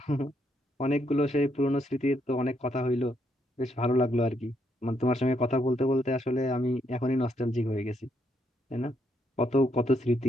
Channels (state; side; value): normal; both; correlation 0.75